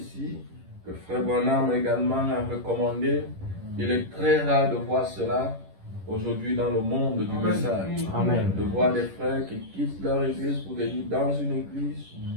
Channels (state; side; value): late; left; 11 ms